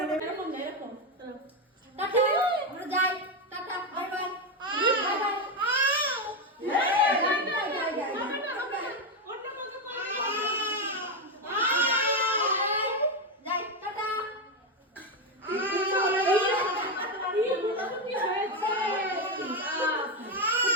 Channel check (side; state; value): both; normal; correlation 0.08